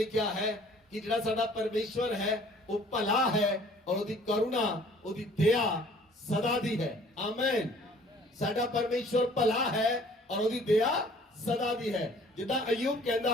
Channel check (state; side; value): normal; both; correlation 0.54